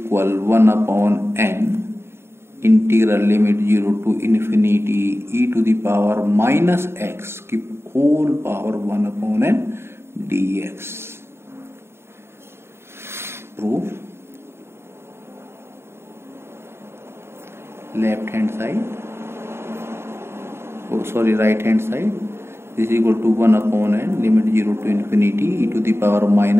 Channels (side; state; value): left; late; 0.12 ms